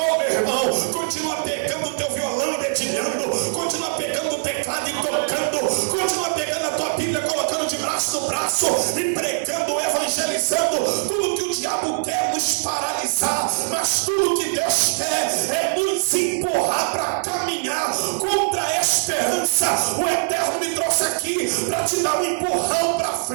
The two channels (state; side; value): silent; left; 59 dB below the other